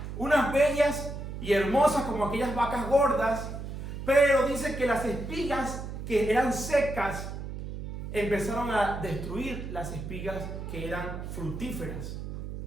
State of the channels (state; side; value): noise; right; hum, 7 dB below the sound